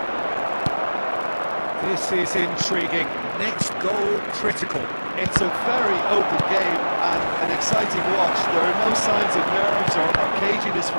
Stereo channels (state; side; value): inverted; both; correlation -1.00